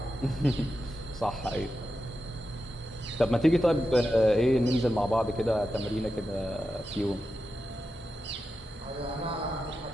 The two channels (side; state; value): both; normal; correlation 0.90